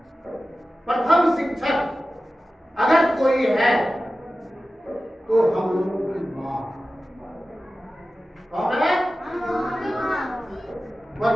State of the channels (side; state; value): both; normal; correlation 0.95